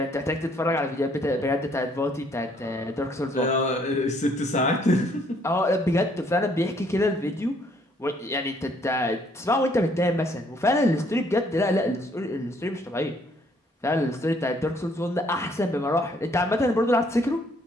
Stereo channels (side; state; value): both; normal; correlation 0.65